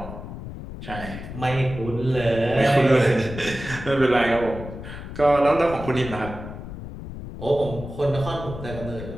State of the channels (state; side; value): noise; left; rumble, 10 dB below the sound